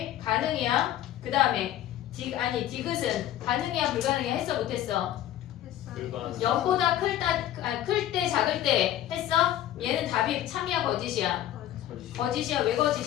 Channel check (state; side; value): quieter; right; 12.4 dB